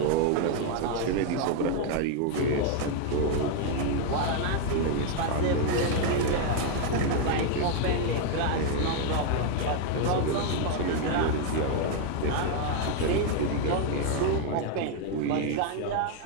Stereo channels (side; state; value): both; different; correlation 0.00